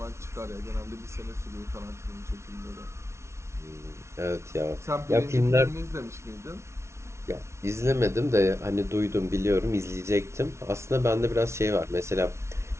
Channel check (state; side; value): late; left; 0.13 ms